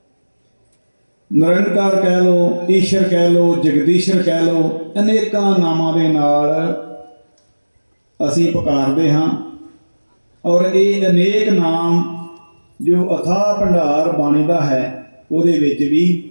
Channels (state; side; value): inverted; both; correlation -1.00